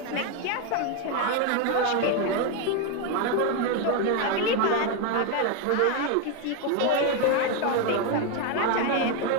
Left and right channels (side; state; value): both; different; correlation 0.02